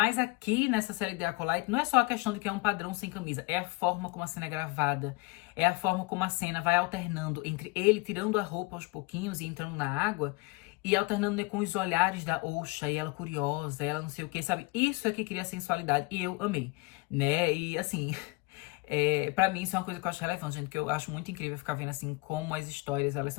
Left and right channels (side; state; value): right; quieter; 25.7 dB